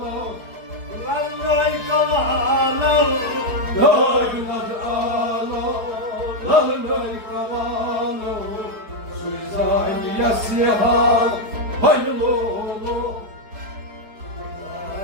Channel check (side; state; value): left; late; 4.7 ms